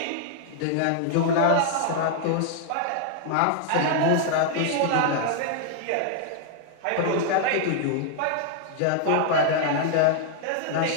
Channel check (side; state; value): both; different; correlation 0.00